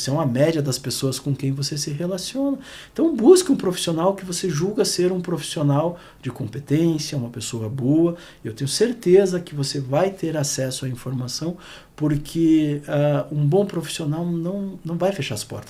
é uma média das pessoas com quem você se relaciona. Então, busque um profissional que você julga ser um profissional de competência, uma pessoa boa. Eu tenho certeza que você vai ter acesso à informação, porque um bom profissional não vai fechar as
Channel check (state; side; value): identical; both; correlation 1.00